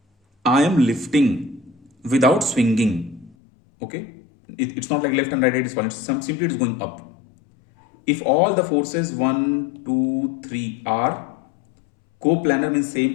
I am lifting without swinging. Okay, it's not like left and right is falling. Simply it is going up. If all the forces 1, 2, 3 are coplanar, means same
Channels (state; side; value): drops out; right; at 3.4 s